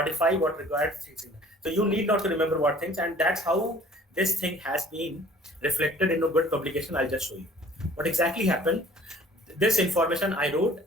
what required things. So you need not to remember what things, and that's how this thing has been reflected in a good publication. I'll just show you what exactly happened. This information I wrote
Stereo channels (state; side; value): normal; both; correlation 0.51